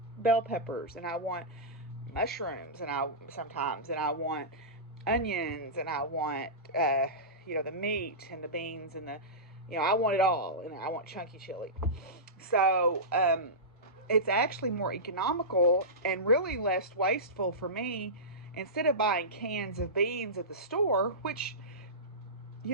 bell peppers, and I want mushrooms, and I want onions, and I want the meat and the beans and I want it all, and I want chunky chili. So it's actually more economical and really less wasteful for me. Instead of buying cans of beans at the store, which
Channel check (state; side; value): normal; both; correlation -0.17